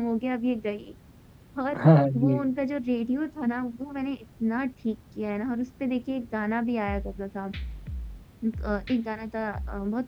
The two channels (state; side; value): identical; both; correlation 1.00